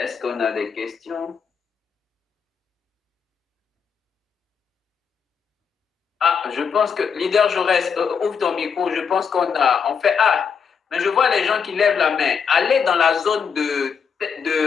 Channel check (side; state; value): right; quieter; 6.5 dB